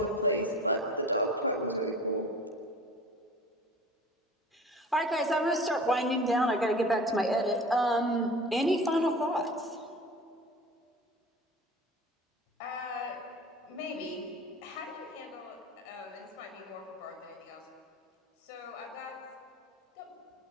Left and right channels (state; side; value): normal; both; correlation 0.40